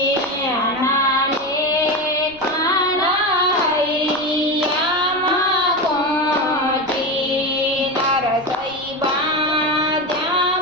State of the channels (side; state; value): right; noise; rumble, 24 dB below the sound